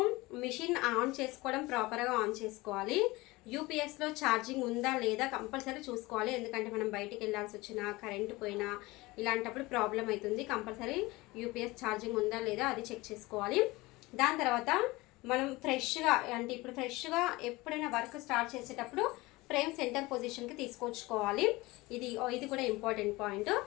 మిషన్ ఆన్ చేసుకోవడం ప్రాపర్గా ఆన్ చేసుకోవాలి. యూపీఎస్లో ఛార్జింగ్ ఉందా లేదా కంపల్సరీ చూసుకోవాలి. ఎందుకంటే మనం బయటికి వెళ్ళాల్సి వచ్చినా, కరెంటు పోయినా ఇలాంటప్పుడు ప్రాబ్లం అవుతుంది. కంపల్సరీ యూపీఎస్ ఛార్జింగ్ ఉందా లేదా అది చెక్ చేసుకోవాలి. దాని తర్వాత మనం ఇప్పుడు ఫ్రెష్గా ఎప్పుడైనా వర్క్ స్టార్ట్ చేసేటప్పుడు ఫ్రేమ్ సెంటర్ పొజిషన్కి తీసుకొచ్చుకోవాలి. ఇది కూడా ఇంపార్టెంట్ పాయింట్.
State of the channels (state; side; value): quieter; right; 21.4 dB